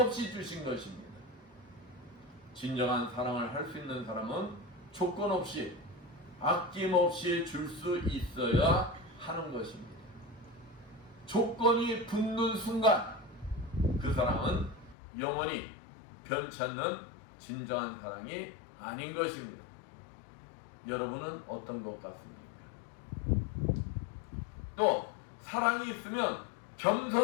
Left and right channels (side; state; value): right; drops out; at 15.0 s